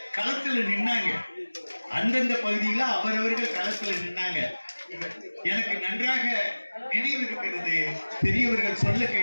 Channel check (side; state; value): both; inverted; correlation -1.00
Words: களத்துல நின்னாங்க. அந்தந்த பகுதியில அவரவர்கள் களத்துல நின்னாங்க. எனக்கு நன்றாக நினைவு இருக்கிறது. பெரியவர்கள் சொல்ல